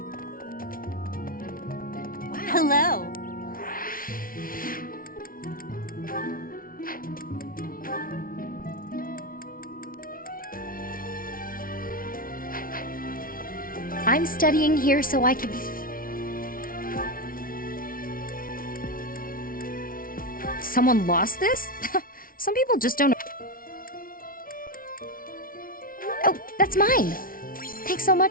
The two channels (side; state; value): right; late; 0.42 ms